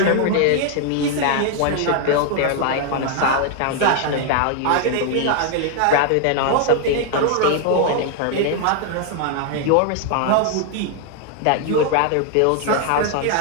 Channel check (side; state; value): both; different; correlation 0.00